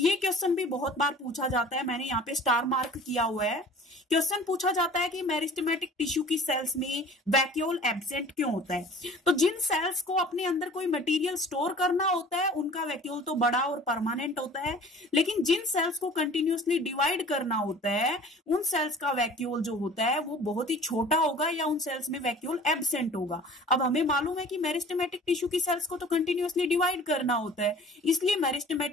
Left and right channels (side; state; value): both; normal; correlation 0.46